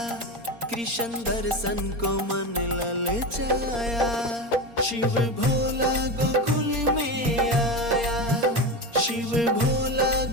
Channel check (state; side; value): late; left; 4.3 ms